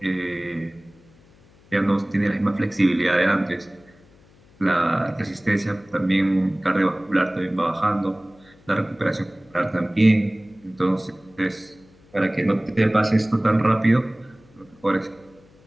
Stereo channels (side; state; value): left; noise; hum, 28 dB below the sound